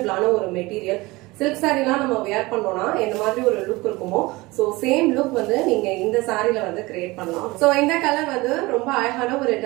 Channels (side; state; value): left; quieter; 21.9 dB